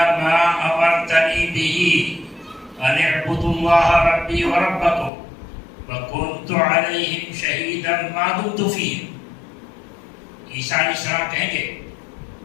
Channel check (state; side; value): drops out; right; at 5.1 s